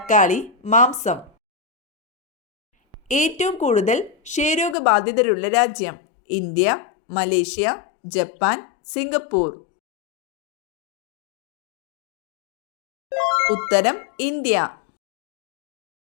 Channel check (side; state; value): right; drops out; at 4.8 s